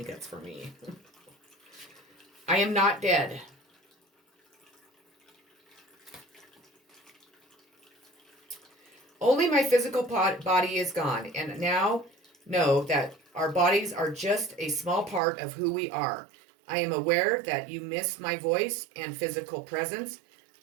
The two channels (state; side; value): drops out; left; at 15.2 s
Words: that's for me. I am not dead. Only my physical body is gone, and now know that our bodies are just a small part of who we are. I am aware that you miss my voice and physical presence,